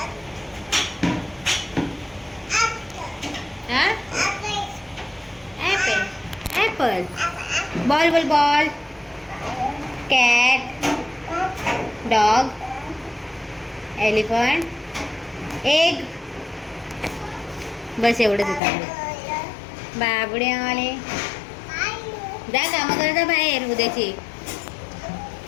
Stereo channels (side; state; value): right; drops out; at 18.6 s